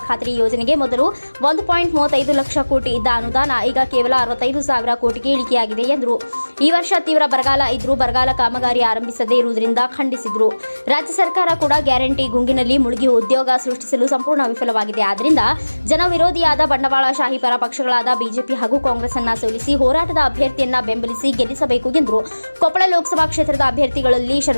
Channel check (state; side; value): inverted; both; correlation -1.00